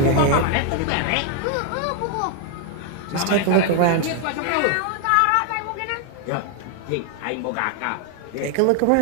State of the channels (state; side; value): different; both; correlation 0.00